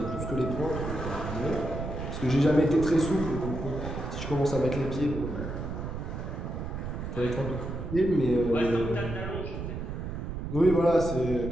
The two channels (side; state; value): right; noise; rumble, 6 dB below the sound